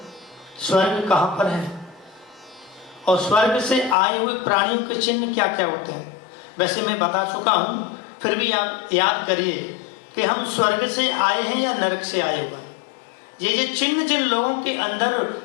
स्वर्ग कहाँ पर है और स्वर्ग से आए हुए प्राणियों के चिन्ह क्या क्या होते हैं। वैसे मैं बता चुका हूं, फिर भी आप याद करिए कि हम स्वर्ग से आए हैं या नरक से आए हुए। ये चिन्ह जिन लोगों के अंदर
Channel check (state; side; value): drops out; right; at 4.0 s